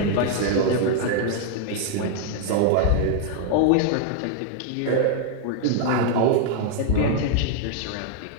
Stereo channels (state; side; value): different; both; correlation 0.00